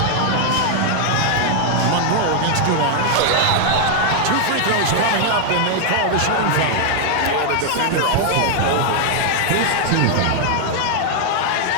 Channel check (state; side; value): different; both; correlation 0.00